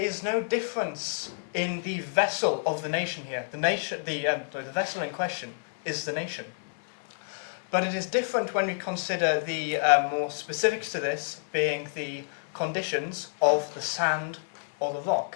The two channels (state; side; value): silent; right; digital silence